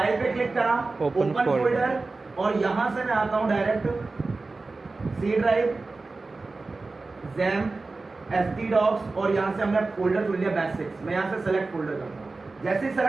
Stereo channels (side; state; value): left; quieter; 3.6 dB